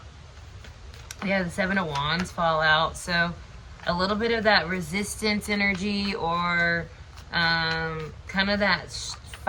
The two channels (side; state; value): both; identical; correlation 1.00